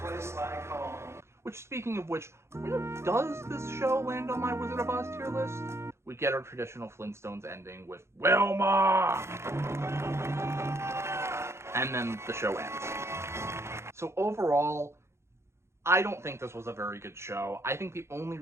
place like home. Which, speaking of which, does this show land on my Wizard of Oz tier list? We get our traditional Flintstones ending with Wilma! And then the show ends. So overall, I don't think this was a very good show. I think the only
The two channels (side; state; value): left; late; 0.13 ms